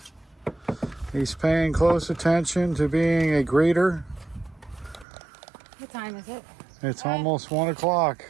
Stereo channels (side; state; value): left; drops out; at 5.1 s